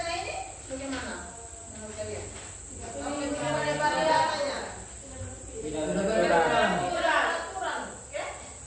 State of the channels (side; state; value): both; identical; correlation 1.00